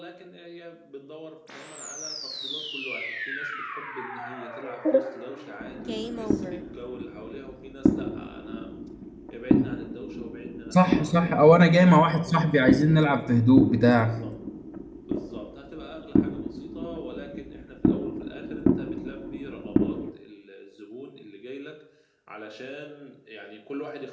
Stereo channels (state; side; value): identical; both; correlation 1.00